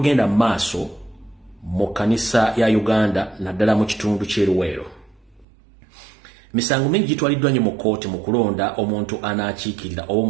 mu maaso mu kanisa ya Uganda naddala mu kitundu ky'eruweero misango mingi gitwaliddwa nnyo mu kooti mu kulonda omuntu anaakiikirira oba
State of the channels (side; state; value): left; drops out; at 5.5 s